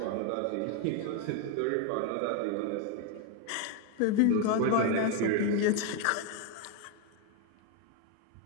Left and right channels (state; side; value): different; both; correlation 0.01